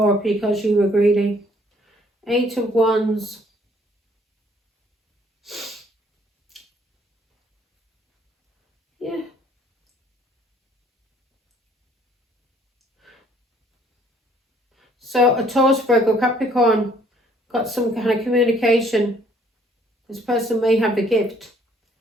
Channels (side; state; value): both; normal; correlation 0.62